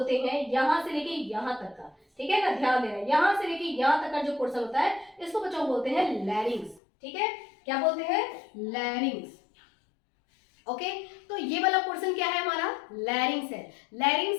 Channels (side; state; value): right; drops out; at 6.8 s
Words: हैं, यहाँ से लेके यहाँ तक का, ठीक है ना, ध्यान देना, यहाँ से लेके यहाँ तक का जो पोर्शन होता है, इसको बच्चों बोलते हैं लैरिंग्स, ठीक है। क्या बोलते हैं? लैरिंग्स। ओके, तो ये वाला पोर्शन क्या है? हमारा लैरिंग्स है।